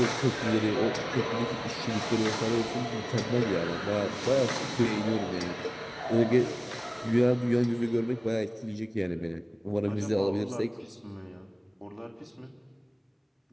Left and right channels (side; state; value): both; identical; correlation 1.00